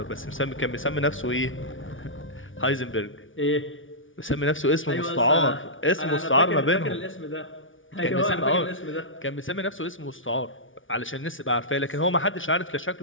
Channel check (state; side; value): late; right; 0.57 ms